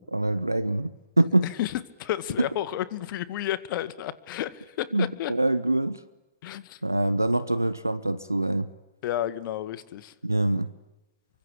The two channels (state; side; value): inverted; both; correlation -0.82